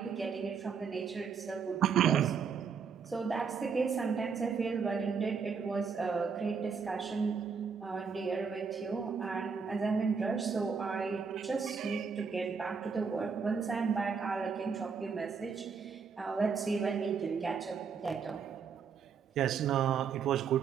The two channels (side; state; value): left; quieter; 5.9 dB